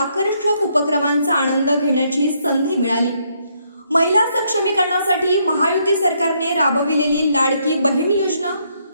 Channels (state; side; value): inverted; both; correlation -0.73